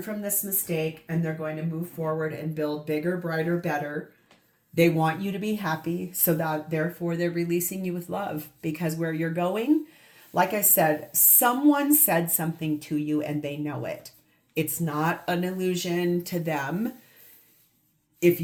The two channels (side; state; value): both; identical; correlation 1.00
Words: from this mistake, and they're going to move forward and build bigger, brighter, better. They want you to be happy, so that therefore they're releasing you with love, because where you're going, like I said, someone said something to you and they know it. It's not an illusion to them. If